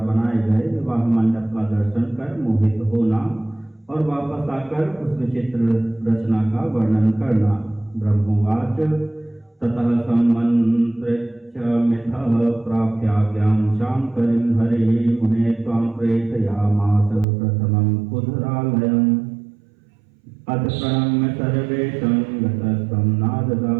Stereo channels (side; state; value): left; drops out; at 17.2 s